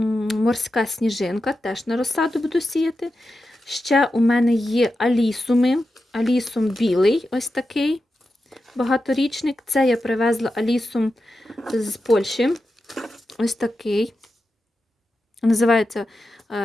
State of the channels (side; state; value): both; normal; correlation 0.90